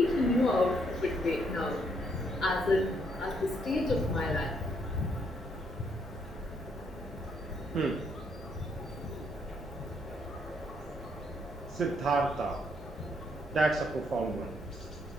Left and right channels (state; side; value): normal; both; correlation 0.72